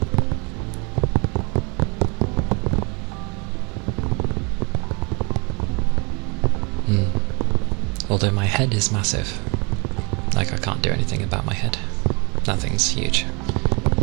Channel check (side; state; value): left; quieter; 30.8 dB